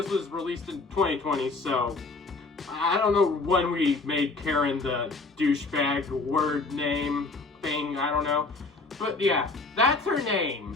was released in 2020, so I don't know when we made Karen the douchebag word name thing, I don't know. But yeah, that's her name.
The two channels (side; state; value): right; quieter; 3.7 dB